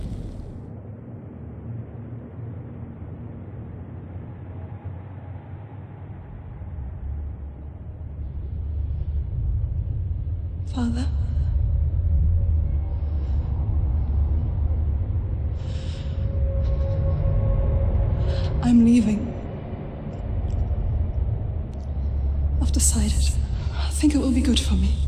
Father? I'm leaving. I've decided. I think it will be good for me.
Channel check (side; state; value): both; identical; correlation 1.00